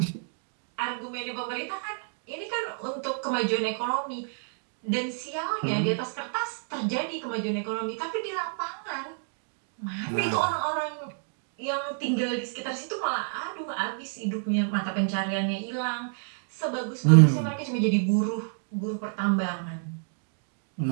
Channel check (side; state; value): left; silent; digital silence